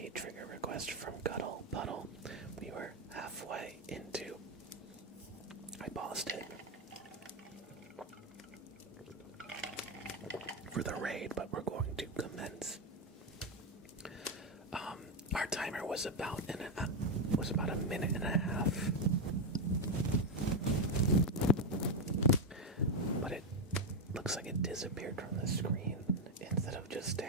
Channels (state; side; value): normal; both; correlation 0.06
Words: trigger request from Cuddle Puddle. We were halfway into. I paused it for the raid, but we're going to commence. Our timer was about a minute and a half, but it looks like it disappeared from the screen instead of just